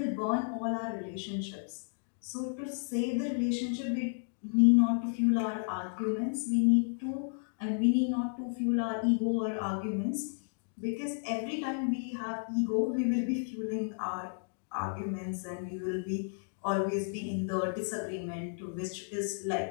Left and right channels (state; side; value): silent; right; digital silence